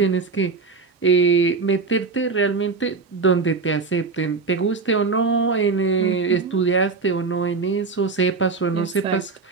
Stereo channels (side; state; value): left; quieter; 4.4 dB